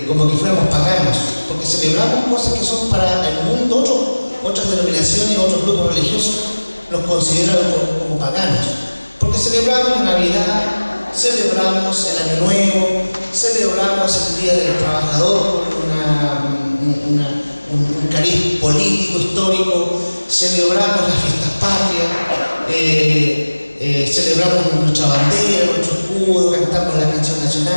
como que fuéramos paganos, porque celebramos cosas que son para el mundo. Otras denominaciones, otros grupos religiosos nos consideran como paganos, porque celebramos la Navidad, celebramos el Año Nuevo, celebramos el Día del Trabajador con un cariz político, histórico, celebramos las fiestas patrias, celebramos nuestra bandera, nuestro escudo, cantamos la canción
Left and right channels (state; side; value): inverted; both; correlation -1.00